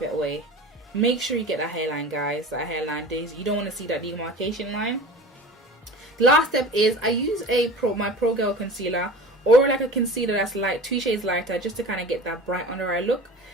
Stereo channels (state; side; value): normal; both; correlation 0.37